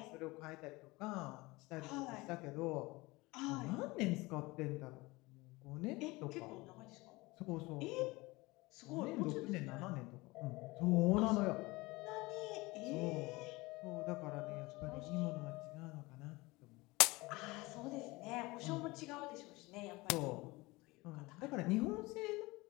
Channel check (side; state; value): right; quieter; 22.4 dB